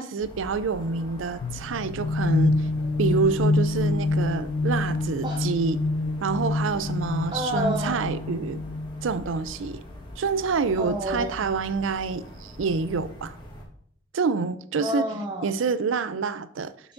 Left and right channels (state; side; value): normal; both; correlation 0.36